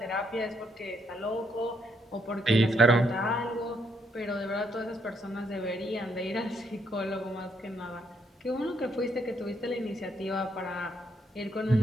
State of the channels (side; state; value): both; normal; correlation 0.74